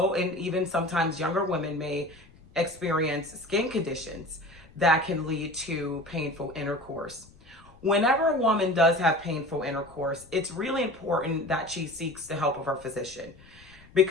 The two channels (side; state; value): left; noise; rumble, 25 dB below the sound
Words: and even sometimes younger women, may experience skin conditions that can lead to painful intercourse. Whenever a woman does have painful intercourse, it's really important that she seeks the help of her physician,